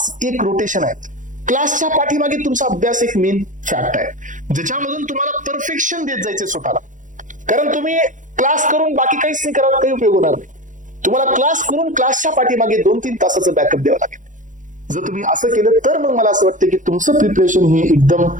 एक रोटेशन आहे. क्लासच्या पाठीमागे तुमचा अभ्यास एक मेन फॅक्ट आहे, ज्याच्यामधून तुम्हाला परफेक्शन देत जायचे स्वतःला, कारण तुम्ही क्लास करून बाकी काहीच नाही करत, काही उपयोग होणार नाही. तुम्हाला क्लास करून क्लासच्या पाठीमागे 2-3 तासाचं बॅकअप द्यावं लागेल. जर तुम्ही असं केलं तर मग मला असं वाटतं की तुमचं प्रिपरेशन हे एकदम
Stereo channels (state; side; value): late; left; 0.37 ms